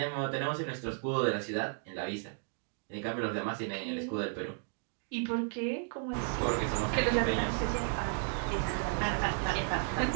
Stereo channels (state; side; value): silent; left; 55 dB below the other